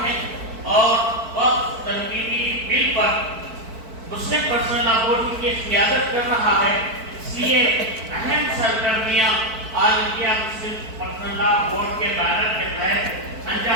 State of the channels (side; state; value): left; late; 4.5 ms